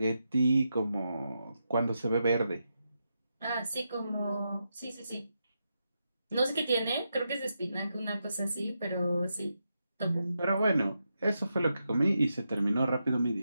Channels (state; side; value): inverted; both; correlation -0.86